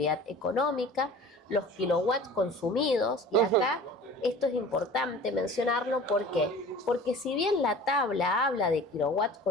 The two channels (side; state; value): both; normal; correlation 0.42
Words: económica, los kilowatts consumidos, y acá esto es importante mencionarlo. ¿Por qué? Porque si bien la tabla habla de kilowatts